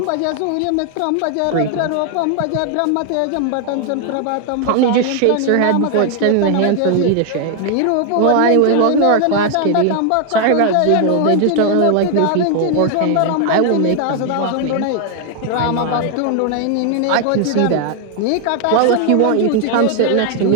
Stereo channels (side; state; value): both; different; correlation 0.00